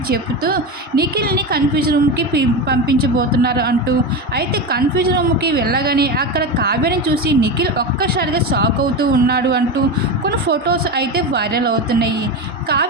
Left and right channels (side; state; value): both; normal; correlation 0.19